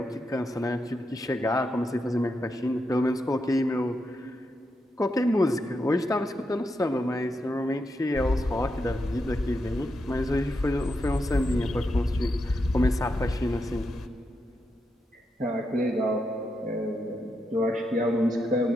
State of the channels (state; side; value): normal; both; correlation 0.84